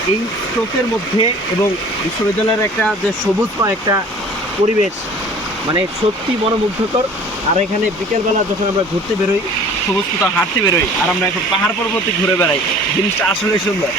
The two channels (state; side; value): normal; both; correlation 0.47